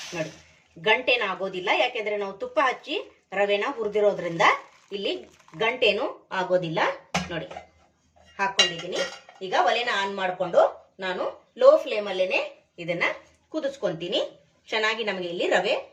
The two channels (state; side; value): identical; both; correlation 1.00